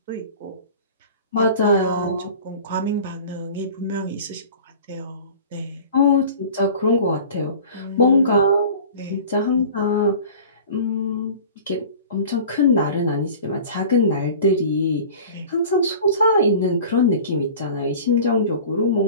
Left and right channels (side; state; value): both; inverted; correlation -0.41